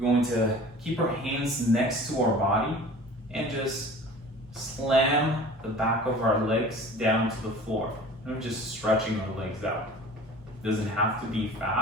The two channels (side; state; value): both; normal; correlation 0.43